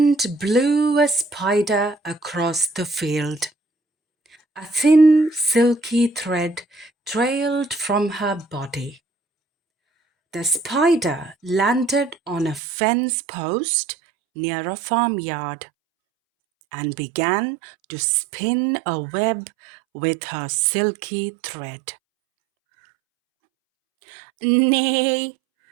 blew a spider across the field. A thin, silky thread trailed from her body. The spider landed on a fence post near a farmyard and began to spin a web with her silky thread. "Nay,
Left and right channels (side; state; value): left; drops out; at 12.6 s